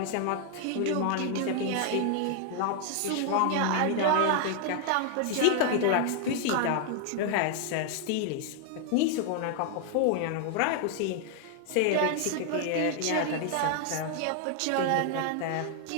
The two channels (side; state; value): both; different; correlation 0.00